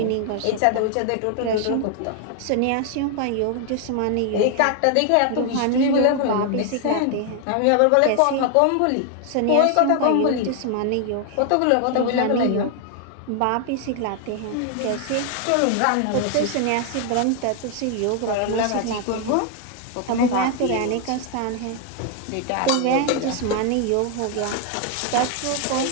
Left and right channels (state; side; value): different; both; correlation 0.00